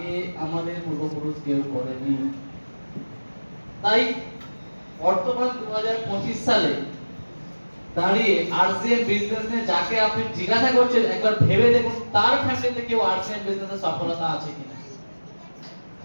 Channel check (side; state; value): both; inverted; correlation -1.00